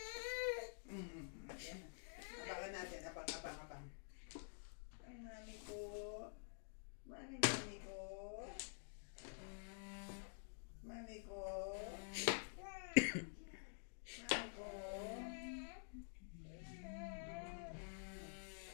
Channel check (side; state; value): right; silent; digital silence